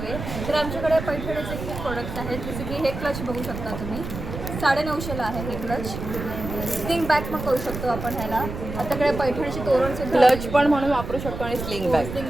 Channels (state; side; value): noise; right; rumble, 7 dB below the sound